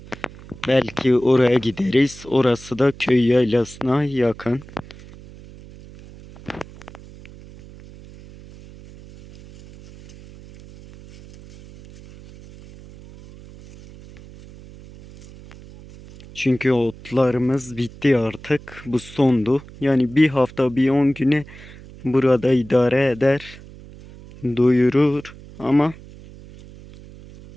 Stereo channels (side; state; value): right; noise; hum, 19 dB below the sound